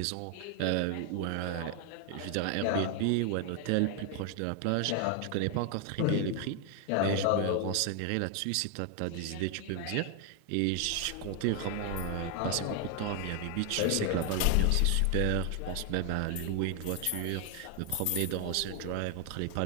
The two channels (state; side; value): different; both; correlation 0.01